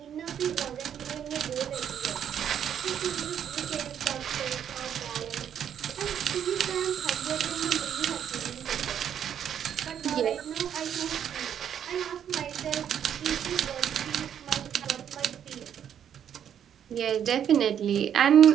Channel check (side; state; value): left; quieter; 9.1 dB